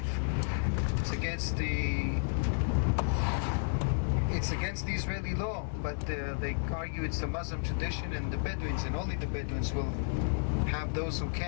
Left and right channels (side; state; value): right; silent; digital silence